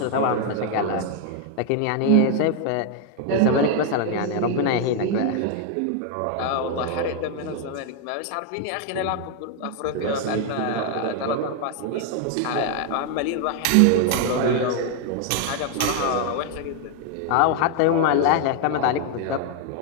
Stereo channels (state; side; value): different; both; correlation 0.00